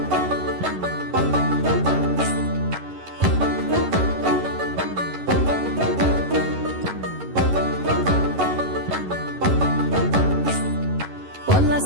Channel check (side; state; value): left; late; 11 ms